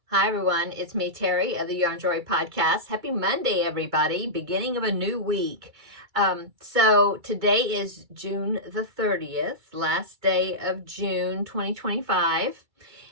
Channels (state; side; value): late; left; 2.3 ms